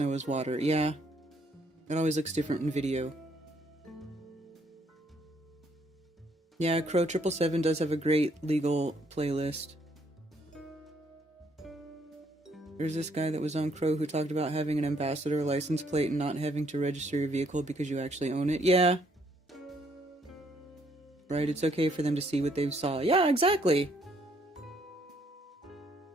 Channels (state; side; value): normal; both; correlation 0.68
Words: is water. Yeah. It always looks different in video. Yeah, Crow 777 does have a great legal playlist. There's this guy that was on Crow who talked about having an ambassador license plate and not having to register your vehicle because you actually own it. Yeah. Right, it's okay for them to see what they saw. Yeah, exactly.